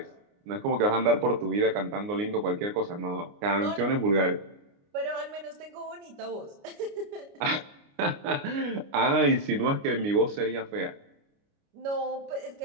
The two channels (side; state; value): left; late; 29 ms